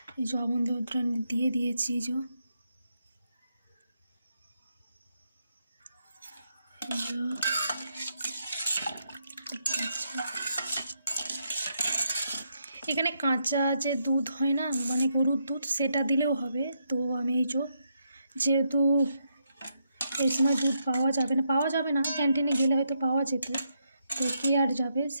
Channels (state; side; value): inverted; both; correlation -0.80